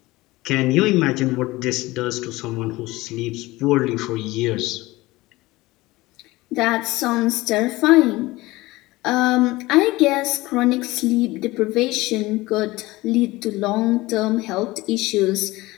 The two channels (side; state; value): right; quieter; 19.9 dB